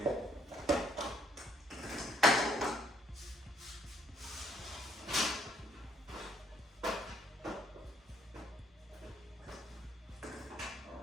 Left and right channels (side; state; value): both; normal; correlation 0.67